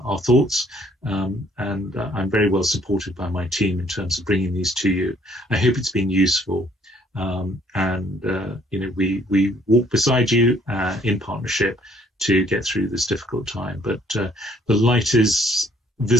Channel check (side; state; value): both; normal; correlation 0.63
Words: thoughts, and I'm very well supported by my team in terms of bringing these to you. I hope it's been useful, and we walk beside you in partnership to get through this difficult time. But the light is